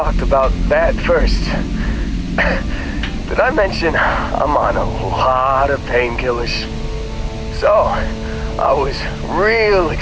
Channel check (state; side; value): identical; both; correlation 1.00